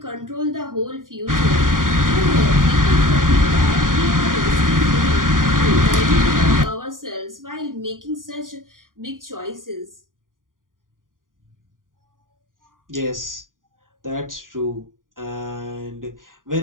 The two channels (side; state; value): left; late; 0.90 ms